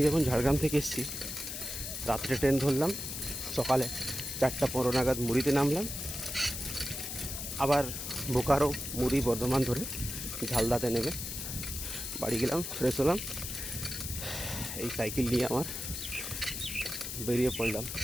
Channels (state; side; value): noise; left; hiss, 6 dB below the sound